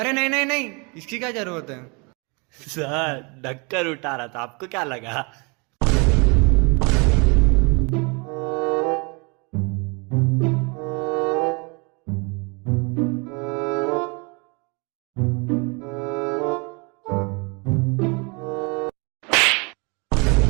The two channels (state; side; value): quieter; left; 30.8 dB